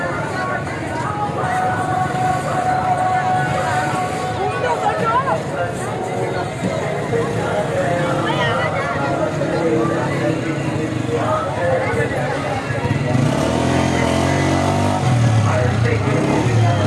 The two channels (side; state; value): both; identical; correlation 1.00